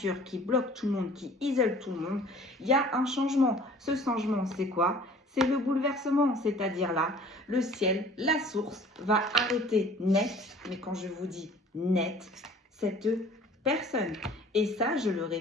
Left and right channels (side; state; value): both; normal; correlation 0.50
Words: qui bloque tout le monde, qui isole tout le monde, il y a un changement. Ce changement, c'est quoi? C'est le bouleversement, c'est-à-dire là, le ciel, la source va arrêter net, mais quand je vous dis net, cette personne. Et ça, je le